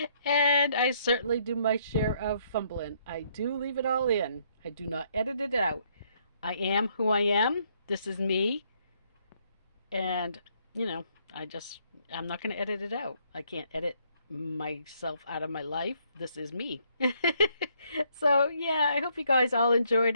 And I certainly do my share of fumbling. I do leave it all in. I do not edit it out. I am who I am. This is me. And, I'm not going to edit it out. I can't edit myself out of my life. This is me. So, yeah, I hope you guys all enjoyed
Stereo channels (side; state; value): both; inverted; correlation -0.70